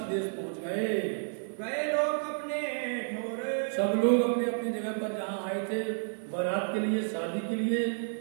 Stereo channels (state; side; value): silent; left; digital silence